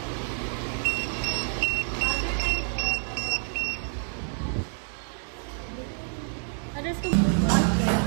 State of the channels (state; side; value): silent; left; digital silence